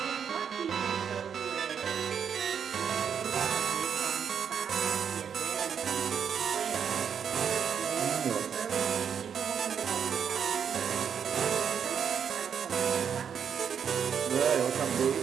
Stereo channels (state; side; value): quieter; left; 7.6 dB